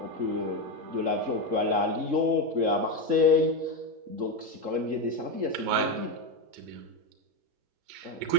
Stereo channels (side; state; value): left; late; 3.7 ms